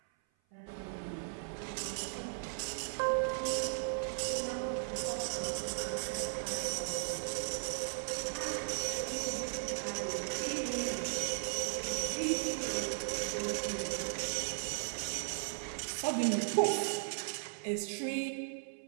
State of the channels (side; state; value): left; silent; 53 dB below the other